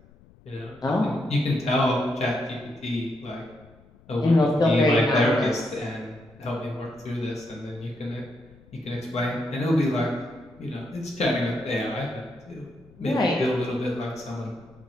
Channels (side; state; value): left; noise; rumble, 26 dB below the sound